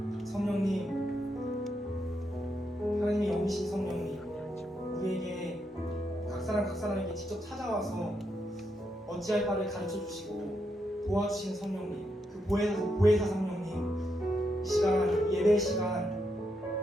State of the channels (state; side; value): normal; both; correlation 0.81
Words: 성령님, 하나님의 영이신 성령님, 우리에게 각 사람에게 직접 찾아와서 어찌할 바를 가르쳐 주시고 도와주시는 성령님, 그 보혜사 성령님, 이 시간 예배